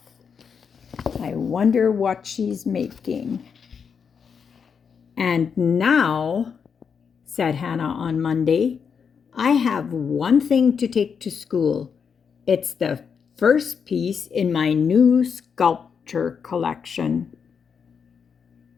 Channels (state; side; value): quieter; right; 6.5 dB